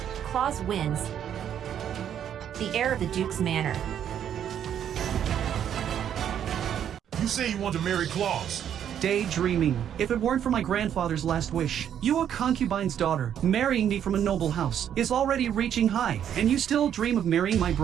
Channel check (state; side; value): quieter; left; 9.5 dB